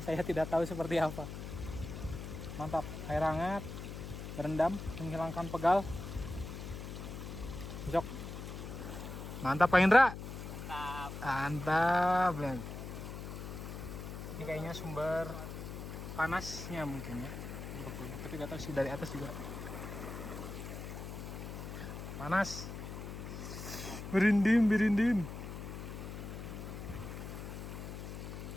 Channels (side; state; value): left; noise; hum, 8 dB below the sound